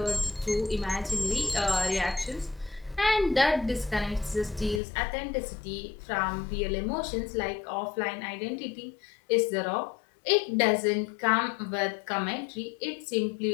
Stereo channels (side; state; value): right; drops out; at 4.8 s